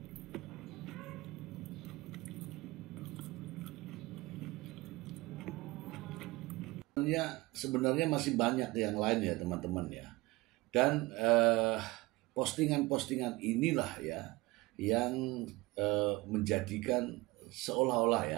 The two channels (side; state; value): left; quieter; 21.7 dB